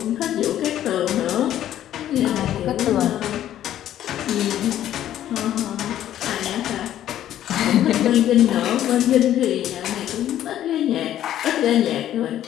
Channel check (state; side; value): quieter; right; 11.9 dB